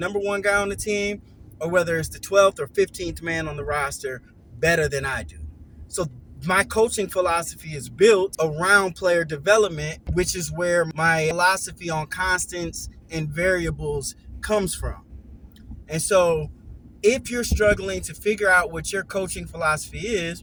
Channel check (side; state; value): both; identical; correlation 1.00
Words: one guy on the team, or whether it's the 12th or 15th man on the roster, better than I do. So my coaching philosophy is built around player development, which is where my philosophy on constants and variables comes from. And so if you're struggling to figure out what your coaching philosophy